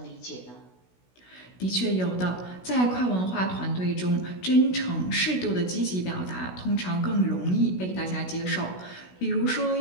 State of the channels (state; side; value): late; right; 16 ms